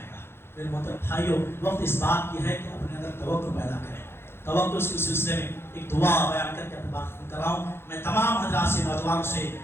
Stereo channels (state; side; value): late; right; 0.11 ms